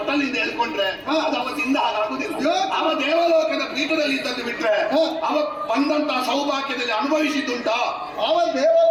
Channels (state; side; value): identical; both; correlation 1.00